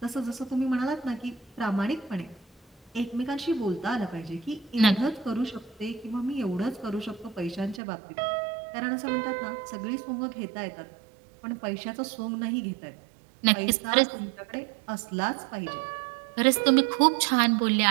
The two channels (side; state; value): left; drops out; at 7.8 s